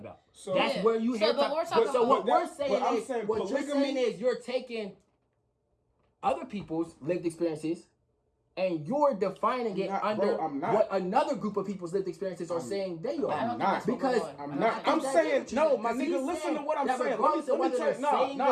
So that's where you hear. What we're saying is you're taking other people's lived experiences and you're defining it under what another group of people's lived experiences are saying they are. I'm not. Because I'm not. I'm saying, no, my nigga, listen to what I'm saying. Let me tell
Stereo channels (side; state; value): both; identical; correlation 1.00